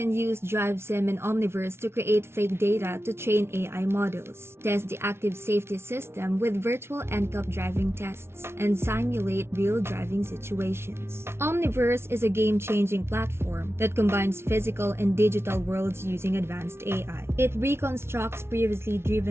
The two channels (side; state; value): left; late; 0.12 ms